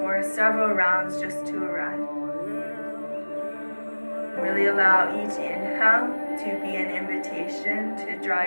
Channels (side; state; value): both; inverted; correlation -1.00